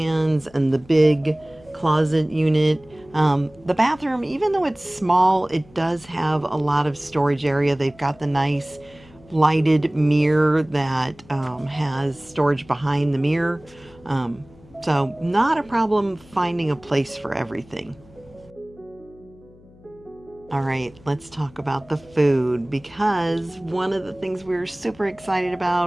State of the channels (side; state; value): left; noise; hum, 25 dB below the sound